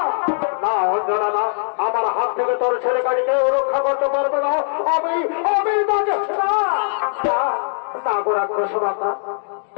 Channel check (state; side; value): silent; right; digital silence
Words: না অঞ্জনা না, আমার হাত থেকে তোর ছেলেটাকে কেউ রক্ষা করতে পারবে না। আমি তাকে না রাক্ষস মাতা,